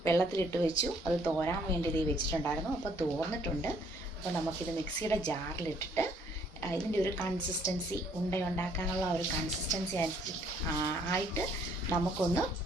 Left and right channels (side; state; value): both; normal; correlation 0.64